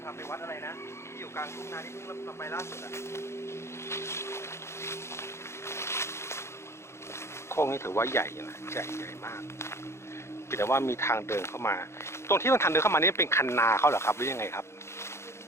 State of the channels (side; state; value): right; late; 0.13 ms